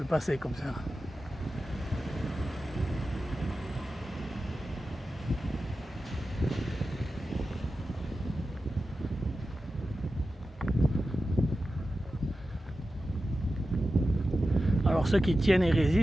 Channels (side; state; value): both; normal; correlation 0.93